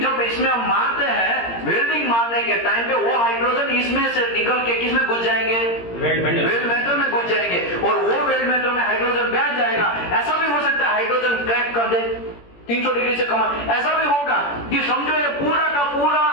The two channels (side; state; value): right; late; 17 ms